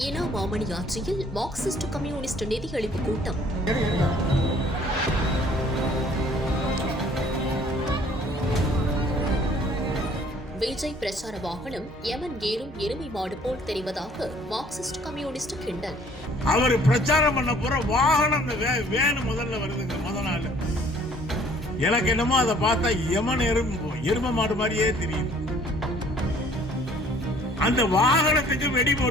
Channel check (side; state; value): both; normal; correlation 0.57